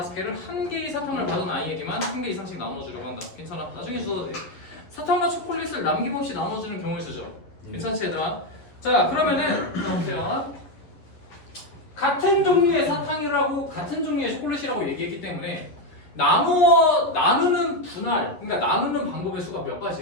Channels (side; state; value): right; late; 11 ms